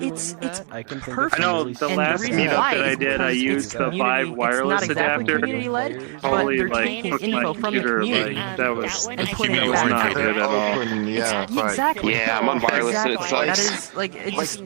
it's perfect. I know the last meetup that I did, I used the Vive wireless adapter. Totally like hooked my computer. Like that was not good at all. Exactly. Yeah, I'm on wireless and it That sucks. is like it's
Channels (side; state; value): left; quieter; 37.7 dB